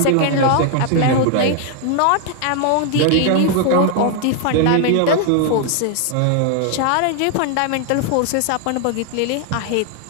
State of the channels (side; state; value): both; different; correlation 0.00